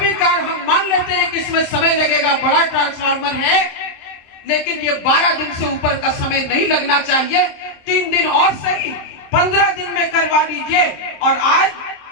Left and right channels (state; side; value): late; right; 26 ms